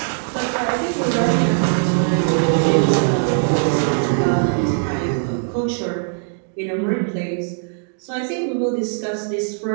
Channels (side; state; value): left; silent; 66 dB below the other